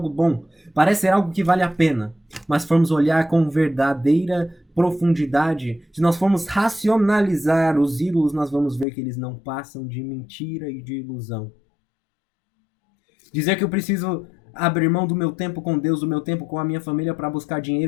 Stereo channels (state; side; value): drops out; right; at 8.8 s